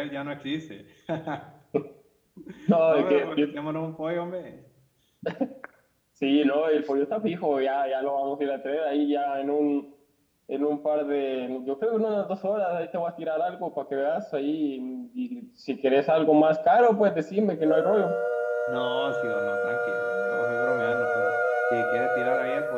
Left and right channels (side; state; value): both; identical; correlation 1.00